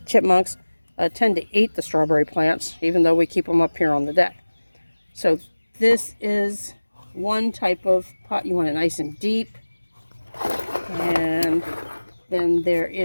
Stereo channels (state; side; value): inverted; both; correlation -1.00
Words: chipmunks, tend to eat the strawberry plants, even though we keep them up here on the deck. So this is one type of pot. You want it nice and deep. And then there